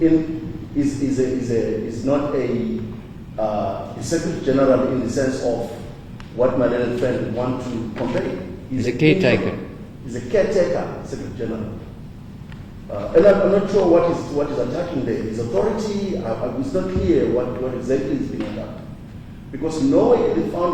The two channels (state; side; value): identical; both; correlation 1.00